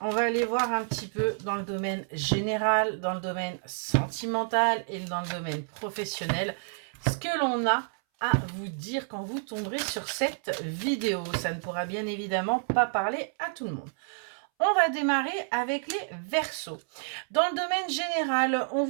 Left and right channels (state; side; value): silent; left; 58 dB below the other